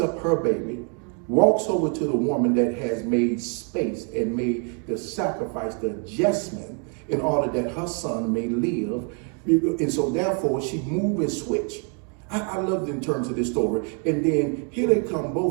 her baby, walks over to the woman that has made space and made the sacrifice, the adjustment, in order that her son may live. And so therefore she moved and switched. I loved in terms of this story. And then here they come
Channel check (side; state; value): left; quieter; 39.2 dB